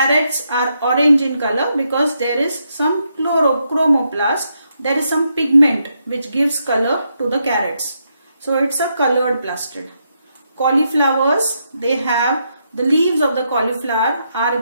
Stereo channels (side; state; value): both; inverted; correlation -0.80